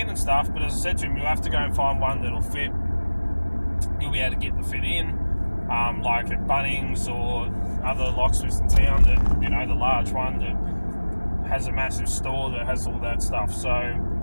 and stuff, but as I said to him, you'll have to go and find one that'll fit. You'll be able to get the fit in, like at Bunnings or other locksmiths in town that, the large one that has a massive store that has all that stuff. So,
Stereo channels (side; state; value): both; inverted; correlation -1.00